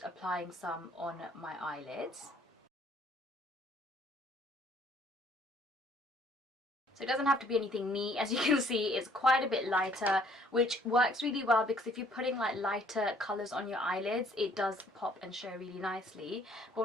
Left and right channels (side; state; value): both; normal; correlation 0.60